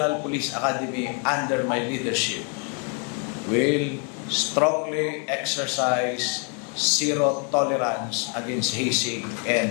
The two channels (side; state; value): right; quieter; 39.1 dB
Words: Police Academy under my leadership will strongly exercise zero tolerance against hazing and